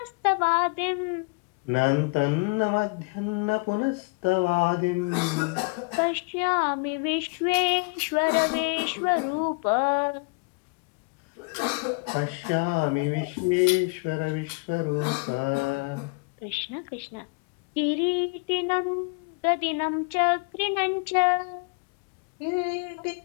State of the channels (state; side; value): quieter; right; 31.9 dB